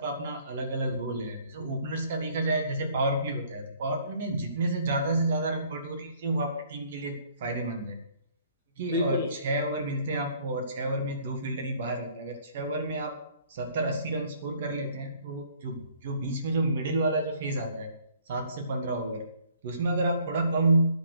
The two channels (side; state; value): both; inverted; correlation -0.60